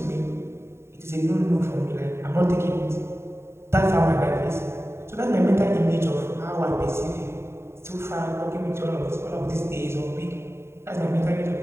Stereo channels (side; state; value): left; late; 0.12 ms